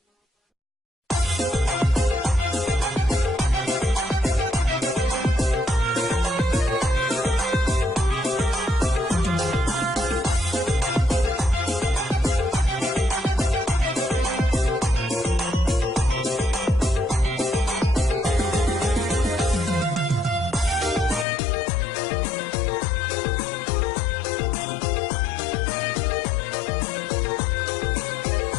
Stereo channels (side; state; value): right; drops out; at 21.2 s